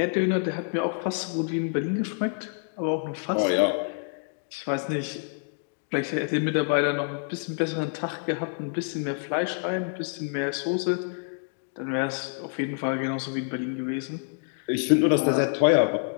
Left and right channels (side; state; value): right; silent; 60 dB below the other